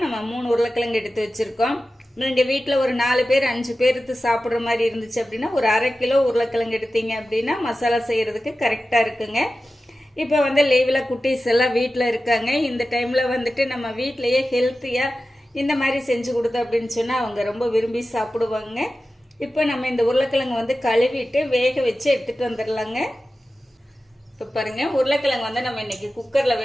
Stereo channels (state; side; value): normal; both; correlation 0.94